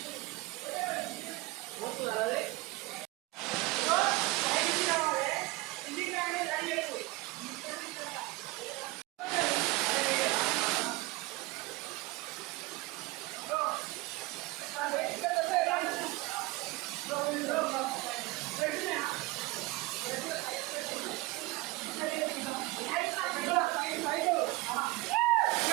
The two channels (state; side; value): quieter; left; 21.2 dB